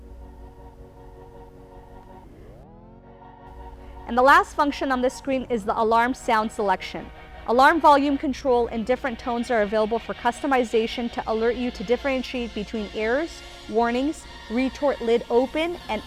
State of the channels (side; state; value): both; identical; correlation 1.00